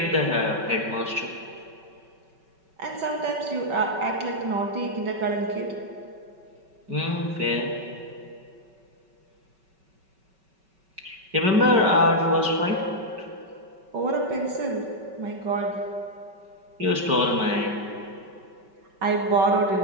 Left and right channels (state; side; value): late; left; 5.3 ms